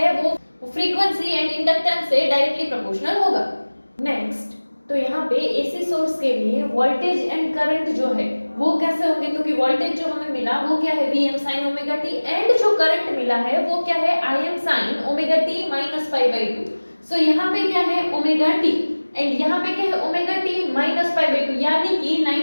वो फ्रीक्वेंसी एंड इंडक्टेंस से डायरेक्टली प्रोपोर्शनल होगा। नेक्स्ट, तो यहाँ पे एसी सोर्स के लिए वोल्टेज एंड करंट जो है वो कैसे होंगे, तो कि वोल्टेज जो हमें मिला वो क्या है Vm sin omega t and जो करंट मिला है वो क्या है Im sin omega t minus pi by 2। सो यहाँ पे क्या है ओमेगा t एंड यहाँ पे क्या है omega t minus pi by 2, यानी कि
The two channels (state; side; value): inverted; both; correlation -1.00